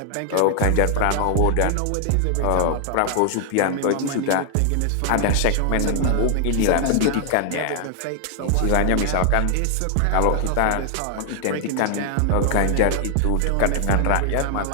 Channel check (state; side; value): different; both; correlation 0.00